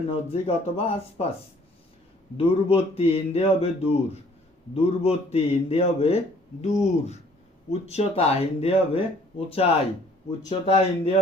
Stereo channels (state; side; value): normal; both; correlation 0.58